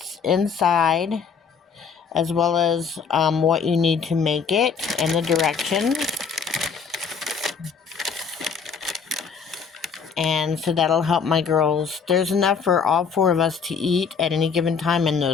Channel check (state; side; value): quieter; right; 6.0 dB